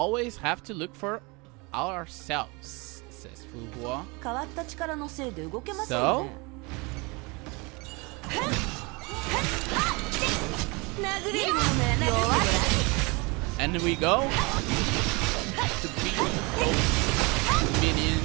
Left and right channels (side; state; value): left; quieter; 27.6 dB